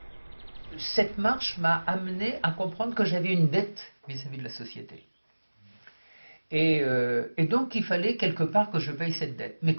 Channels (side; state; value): both; inverted; correlation -1.00